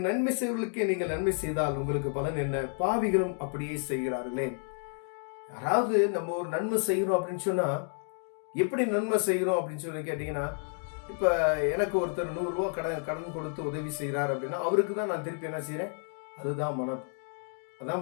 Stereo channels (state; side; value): silent; right; 57 dB below the other